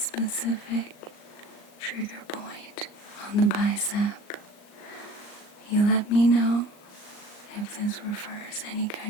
trigger point on the bicep. You let me know if this refers any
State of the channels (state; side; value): late; right; 38 ms